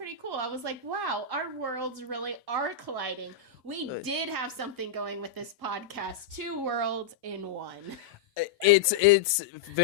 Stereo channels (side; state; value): right; quieter; 6.4 dB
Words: cool. I was like, wow, our worlds really are colliding. We did have something going with this podcast. 2 worlds in one. It's